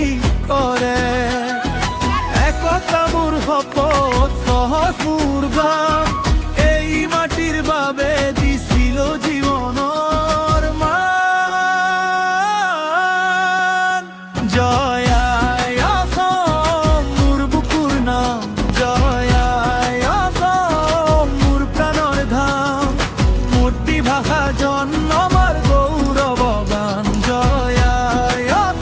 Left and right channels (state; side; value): identical; both; correlation 1.00